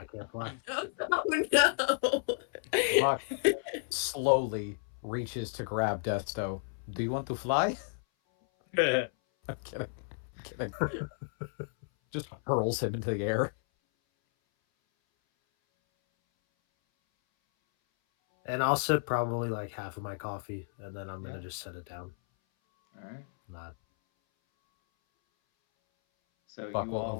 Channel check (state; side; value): silent; right; 56 dB below the other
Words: can't fly. Oh no. Buck slowly reaches to grab Desto. Do you want to fly? I'm kidding. I'm kidding. Just hurls him into the air. And I'll sip probably like half of my coffee, and then I'm Yeah. gonna just set it down. All right. Not. So Buck will